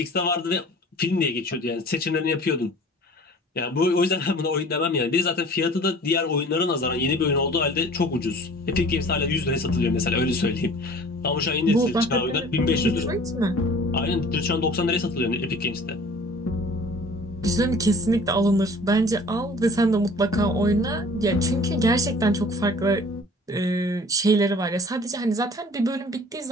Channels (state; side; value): normal; both; correlation 0.47